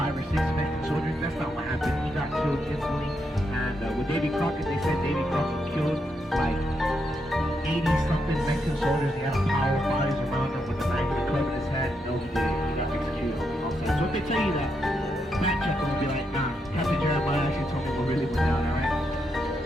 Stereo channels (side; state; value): both; normal; correlation 0.81